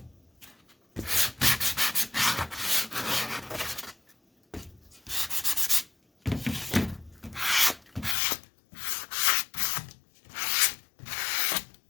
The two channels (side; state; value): right; drops out; at 8.2 s